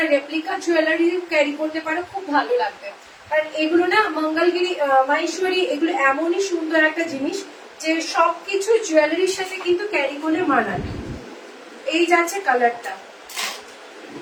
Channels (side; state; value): both; identical; correlation 1.00